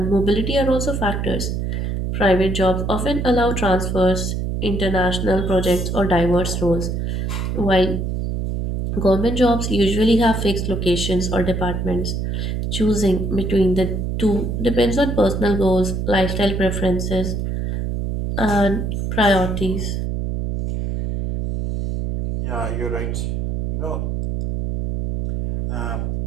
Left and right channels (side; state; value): right; noise; hum, 2 dB below the sound